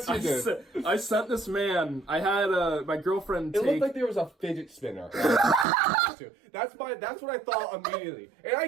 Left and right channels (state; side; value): drops out; left; at 5.7 s